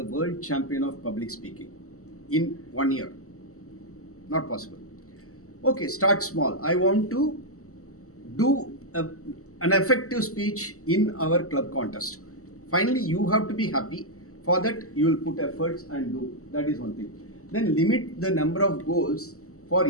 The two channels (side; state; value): right; late; 0.64 ms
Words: world champion of public speaking in 1 year. Not possible. Okay, start small. I want to do an effective speech in our club contest. Finally, you have to be happy. For that, you will put efforts and do. That is one thing. Then limit the number of goals for